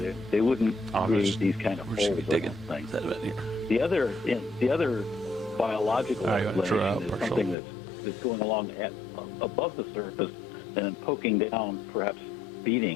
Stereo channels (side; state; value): right; drops out; at 7.6 s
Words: they wouldn't Oh, create these kind of we're holes. just gonna be digging I don't think. sediment here. The other biological All right, you wanna draw out explanation is partial? something that's going along above the surface and then poking down, perhaps